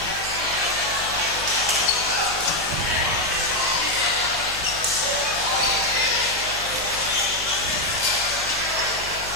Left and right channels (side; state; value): left; noise; hum, 16 dB below the sound